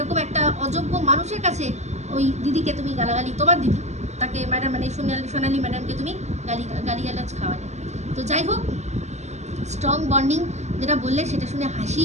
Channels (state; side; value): late; left; 0.33 ms